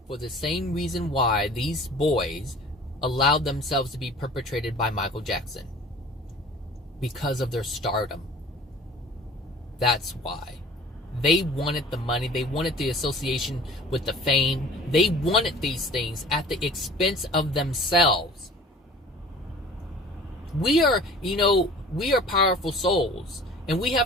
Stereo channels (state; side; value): normal; both; correlation 0.45